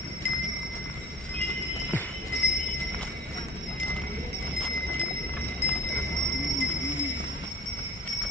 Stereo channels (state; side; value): normal; both; correlation 0.44